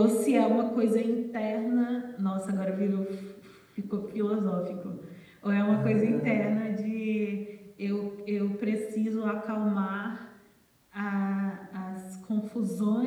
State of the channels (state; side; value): identical; both; correlation 1.00